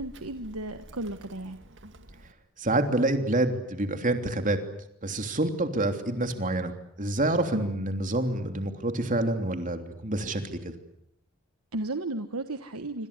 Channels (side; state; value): both; normal; correlation 0.37